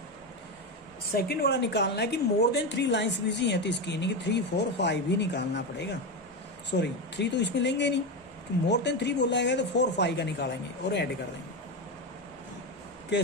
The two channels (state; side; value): normal; both; correlation 0.14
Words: second वाला निकालना है कि मोर देन 3 लाइंस बिजी हैं, तो इसकी यानी कि 3, 4, 5 भी निकालना पड़ेगा। सॉरी 3 तो इसमें लेंगे नहीं, कि मोर देन 3 बोला गया तो 4, 5 का निकालेंगे और ऐड कर देंगे।